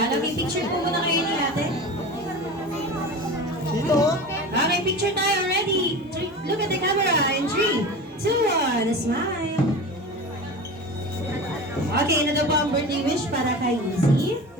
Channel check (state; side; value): normal; both; correlation 0.32